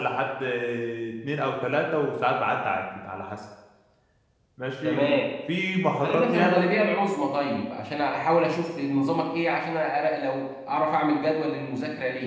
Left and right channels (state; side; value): identical; both; correlation 1.00